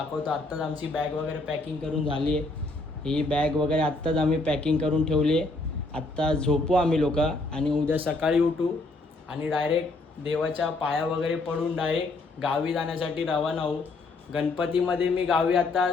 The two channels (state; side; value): quieter; right; 3.2 dB